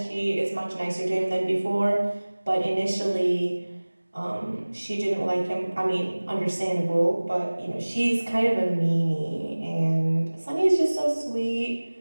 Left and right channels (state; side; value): inverted; both; correlation -1.00